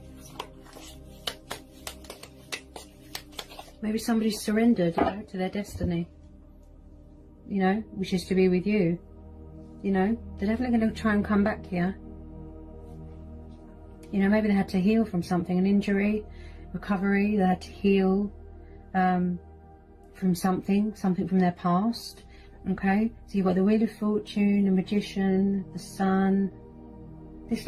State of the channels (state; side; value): identical; both; correlation 1.00